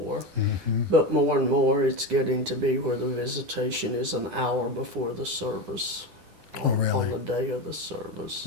Mm-hmm. But more and more, it's getting to be where the visitation is an hour before the service. Oh, really? On the day of the service.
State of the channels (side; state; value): left; late; 10 ms